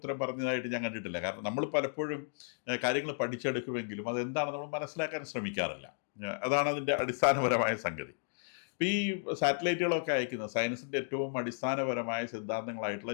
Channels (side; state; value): right; silent; digital silence